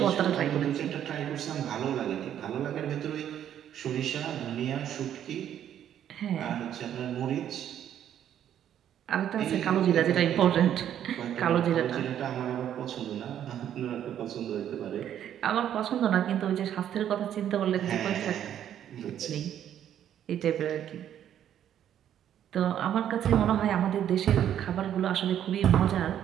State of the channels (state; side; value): quieter; left; 10.3 dB